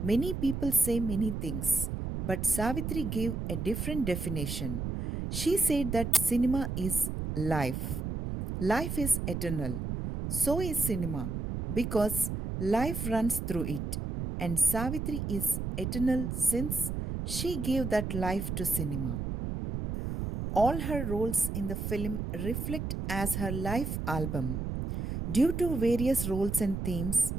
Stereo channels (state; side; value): noise; right; rumble, 4 dB below the sound